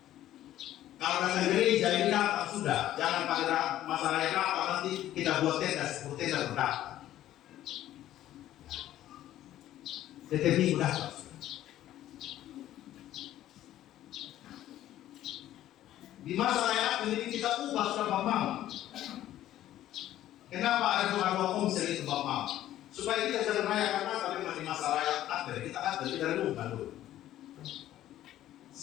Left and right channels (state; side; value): quieter; right; 13.1 dB